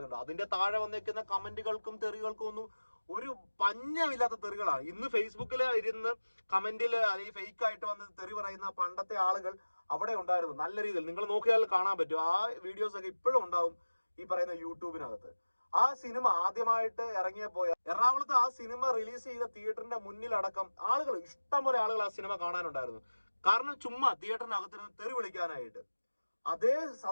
അതിന്റെ താഴെ വന്നിരിക്കുന്ന കമന്റുകൾക്കും തെറികൾക്കും ഒന്നും ഒരു പഞ്ഞമില്ലാത്ത തെറികളാണ്. ഇന്ന് ഫേസ്ബുക്കിൽ ഇരുന്ന് കമന്റിൽ അല്ലെങ്കിൽ ഫേക്ക് ആയിട്ട് വന്ന് തെറി പറയുന്ന പണ്ടത്തെ ആളുകൾ അവിടെ ഉണ്ടായിരുന്നു. നല്ല രീതിയിൽ നിങ്ങൾ നോക്കിയാൽ കാണാൻ പറ്റും. ആ വീഡിയോസ് ഒക്കെ ഇപ്പോഴും ഉണ്ടാവും ഈ പറയുന്ന യൂട്യൂബിനകത്ത്. ആ സിനിമ ആദ്യമായിട്ട് ഇറങ്ങിയപ്പോ എറണാകുളത്ത് ആ സിനിമ റിലീസ് ചെയ്ത തിയേറ്ററിന്റെ മുന്നിലടക്കം ആളുകൾ, ഇഷ്ടംപോലെ ആളുകൾ ആ സിനിമ കാണാനുണ്ടായിരുന്നു. കാരണം ചുമ്മാ തിയേറ്ററിനകത്തിരുന്ന് തെറി വിളിക്കാനായിട്ട്. അതേ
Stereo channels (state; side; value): inverted; both; correlation -1.00